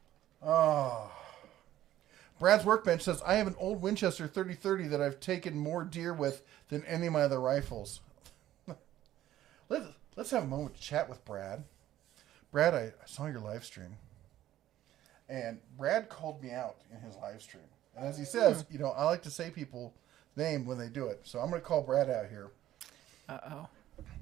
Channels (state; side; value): quieter; left; 13.2 dB